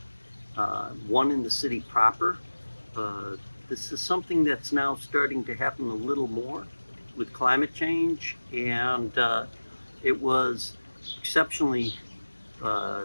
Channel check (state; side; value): inverted; both; correlation -1.00